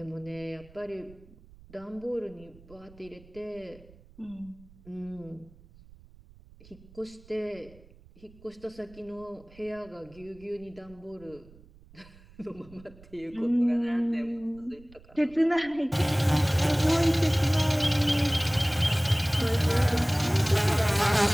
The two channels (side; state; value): right; noise; rumble, 24 dB below the sound